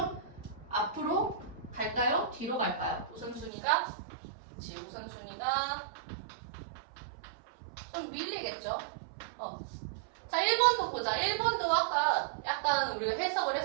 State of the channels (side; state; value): left; drops out; at 3.5 s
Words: 앞으로 갈까요? 뒤로 갈까요? 우선순위가 좀 밀리겠죠? 자, 1번도 보자. 1번도 아까 약간 우리가 해석을